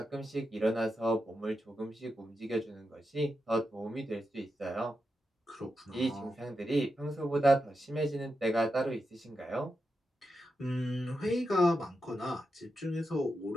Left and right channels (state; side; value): normal; both; correlation 0.87